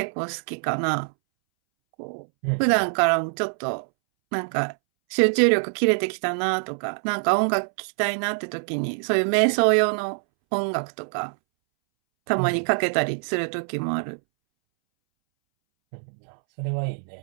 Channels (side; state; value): left; silent; 62 dB below the other